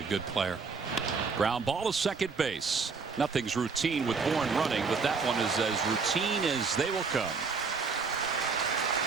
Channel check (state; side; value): quieter; left; 5.0 dB